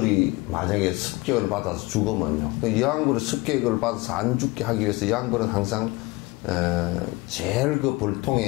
만약에 습격을 받아서 죽으면요. 그 여왕벌이 습격을 받아서 안 죽게 하기 위해서 여왕벌은 항상 제일 그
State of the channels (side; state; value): right; quieter; 22.7 dB